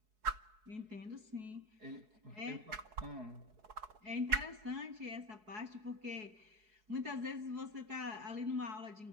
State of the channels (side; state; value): left; late; 4.7 ms